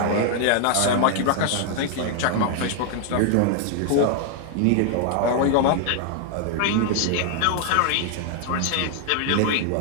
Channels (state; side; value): different; both; correlation 0.00